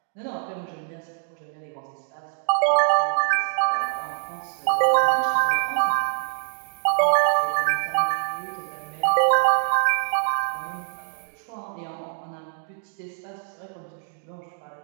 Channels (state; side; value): silent; left; digital silence